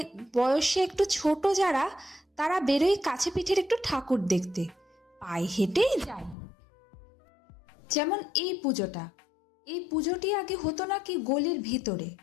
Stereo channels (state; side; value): drops out; right; at 6.4 s